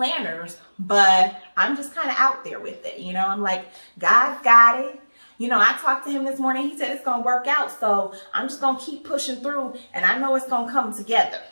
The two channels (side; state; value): both; inverted; correlation -1.00